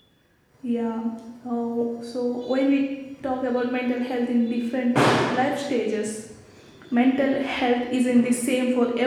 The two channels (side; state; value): both; identical; correlation 1.00